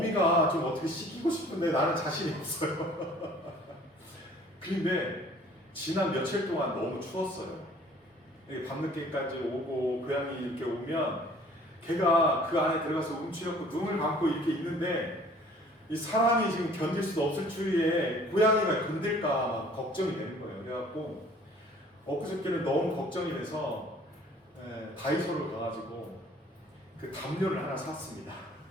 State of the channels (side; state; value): both; normal; correlation 0.53